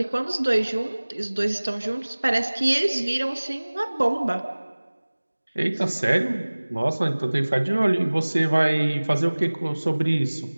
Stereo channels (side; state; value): both; inverted; correlation -1.00